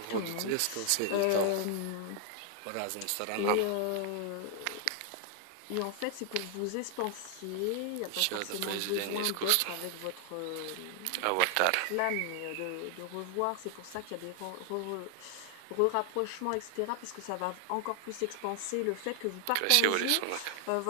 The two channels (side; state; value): both; different; correlation 0.00